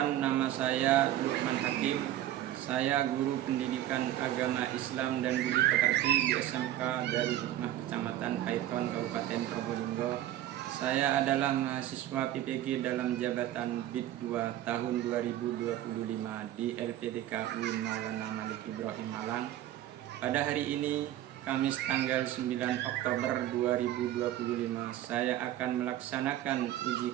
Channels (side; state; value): left; quieter; 12.9 dB